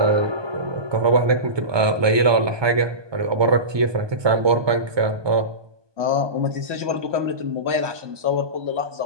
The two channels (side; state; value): left; late; 1.2 ms